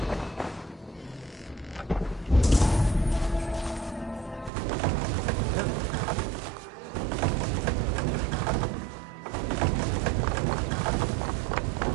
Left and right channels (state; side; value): drops out; left; at 4.5 s